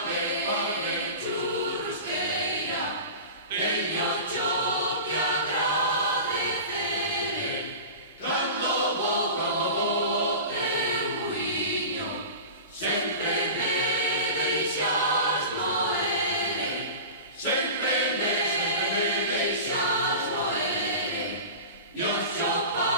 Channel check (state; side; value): inverted; both; correlation -0.33